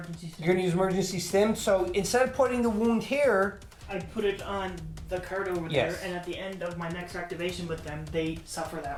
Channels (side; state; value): both; identical; correlation 1.00